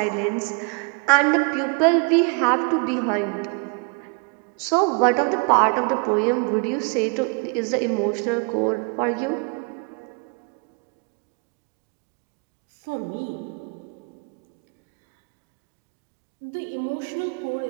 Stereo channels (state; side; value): quieter; left; 35.9 dB